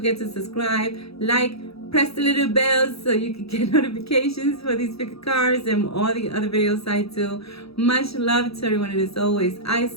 to subscribe, like, press the little bell so you can get notifications for these pick cards and all the other videos I do. Much love to everyone, and as always, I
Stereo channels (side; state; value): right; late; 0.77 ms